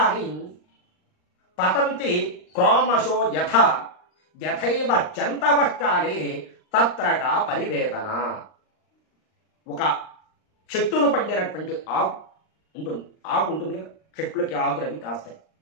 పతంతి క్రోమశో యథైవ జంతవ కాలే తత్రక పరివేదన. ఒక చెట్టును పండినటువంటి ఆకు ఉంటుంది కదా, చెట్లకి ఆకులు అవి కాస్తాయి.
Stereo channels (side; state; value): right; late; 39 ms